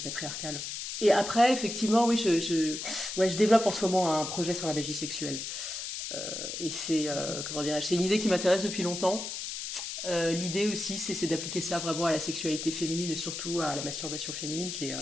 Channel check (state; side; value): noise; left; hiss, 6 dB below the sound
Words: patriarcale. Et après, effectivement, oui, je développe en ce moment un projet sur la magie sexuelle. Et c'est, comment dirais-je, c'est une idée qui m'intéresse depuis longtemps. L'idée aussi, c'est d'appliquer ça vraiment à la sexualité féminine et surtout à la masturbation féminine, qui est